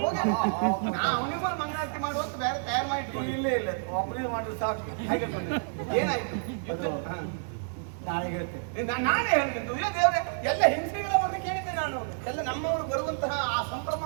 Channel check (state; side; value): silent; left; 58 dB below the other